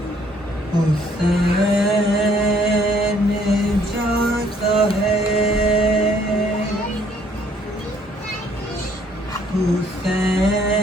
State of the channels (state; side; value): normal; both; correlation 0.63